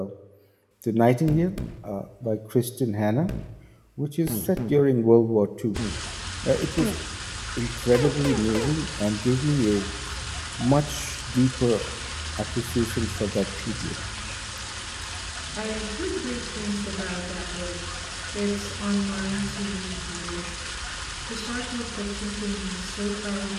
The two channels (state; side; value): identical; both; correlation 1.00